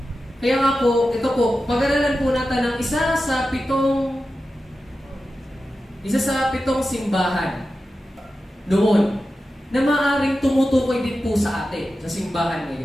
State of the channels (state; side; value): normal; both; correlation 0.92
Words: Kaya nga po, ito po, pag-aralan po natin ng isa sa pitong simbahan noon na maaaring tumutukoy din po sa atin, sa simbahan